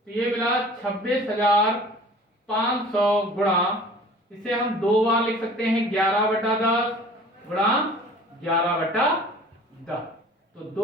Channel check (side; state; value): both; normal; correlation 0.46